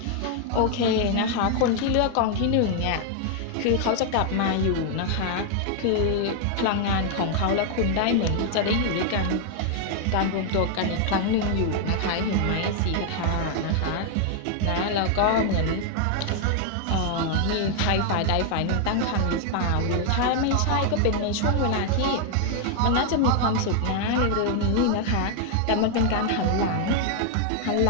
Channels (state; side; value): different; both; correlation 0.00